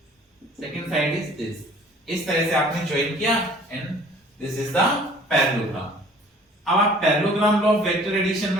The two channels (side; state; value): both; normal; correlation 0.52